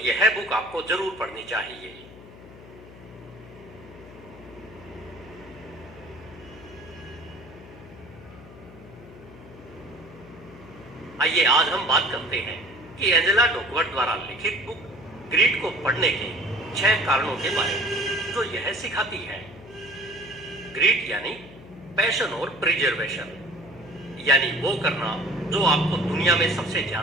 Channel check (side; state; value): left; noise; hum, 18 dB below the sound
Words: यह बुक आपको जरूर पढ़नी चाहिए। आइए आज हम बात करते हैं कि एंजेला डकवर्थ द्वारा लिखित बुक ग्रीड को पढ़ने के 6 कारणों के बारे में, जो यह सिखाती है। ग्रीड यानी पैशन और प्रिजर्वेशन, यानी वो करना जो आपको दुनिया में सबसे